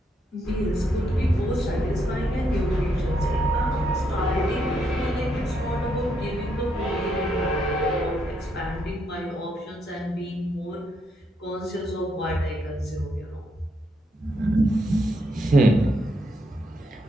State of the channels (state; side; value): normal; both; correlation 0.77